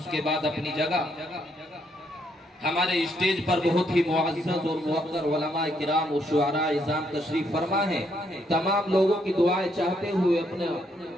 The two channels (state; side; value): normal; both; correlation 0.74